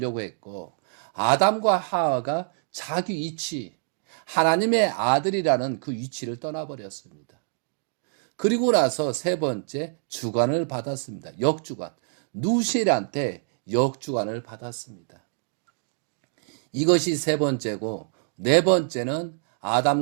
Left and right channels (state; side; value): silent; left; digital silence